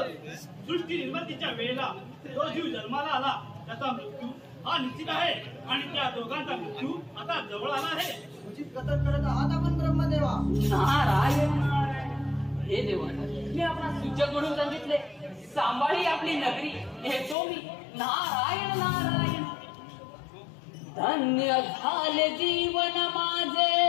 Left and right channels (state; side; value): drops out; right; at 17.4 s